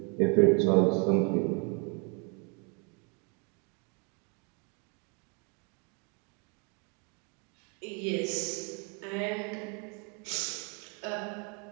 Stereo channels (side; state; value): left; quieter; 33.3 dB